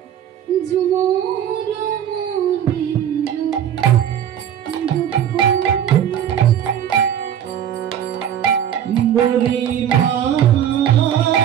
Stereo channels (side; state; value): left; quieter; 9.8 dB